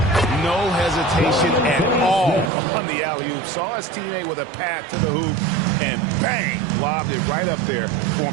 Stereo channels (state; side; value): drops out; left; at 2.5 s